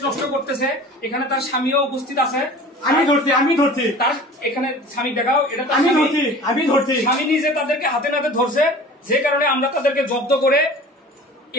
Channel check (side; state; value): both; normal; correlation 0.42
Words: নষ্ট করতেছে এখানে তার স্বামীও উপস্থিত আছে আমি ধরছি তার এখানে স্বামী দেখাও এটা আমি ধরছি স্বামী নিজে তাদেরকে হাতে নাতে ধরছে যে কারণে আমরা তাদেরকে জব্দ করে